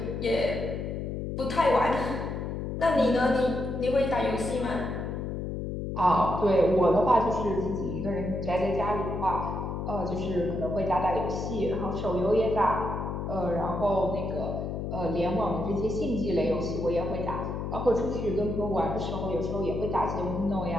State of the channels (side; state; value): left; noise; hum, 4 dB below the sound